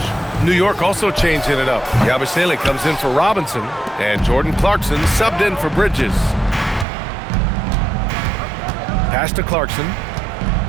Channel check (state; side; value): drops out; left; at 6.9 s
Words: New York also changing it up. Yabusele comes in for Robinson. And Jordan Clarkson subbed in for Bridges. Pass to Clarkson.